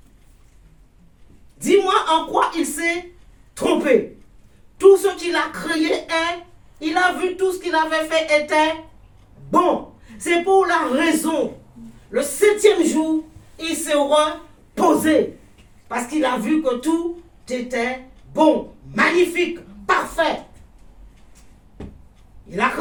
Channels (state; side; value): identical; both; correlation 1.00